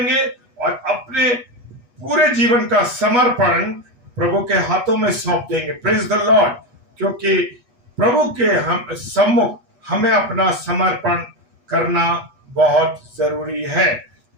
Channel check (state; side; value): late; left; 8.2 ms